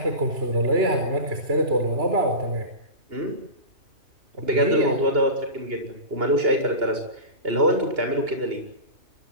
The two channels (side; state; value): left; late; 2.8 ms